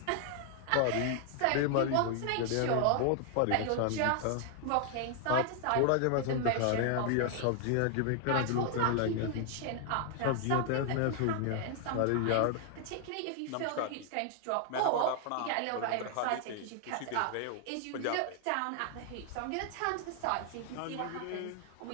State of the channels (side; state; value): both; different; correlation 0.00